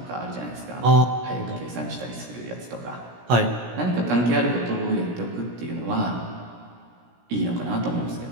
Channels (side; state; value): left; late; 17 ms